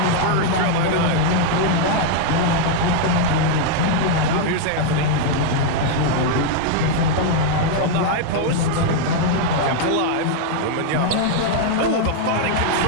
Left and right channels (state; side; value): different; both; correlation 0.00